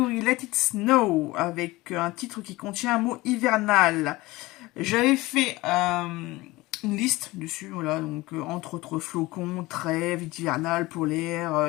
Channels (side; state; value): right; quieter; 20.3 dB